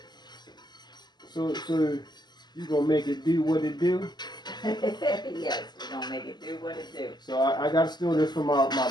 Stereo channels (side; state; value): right; late; 0.21 ms